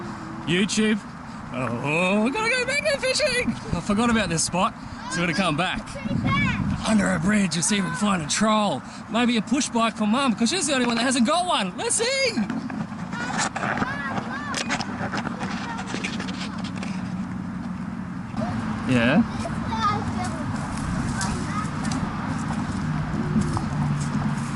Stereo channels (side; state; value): both; identical; correlation 1.00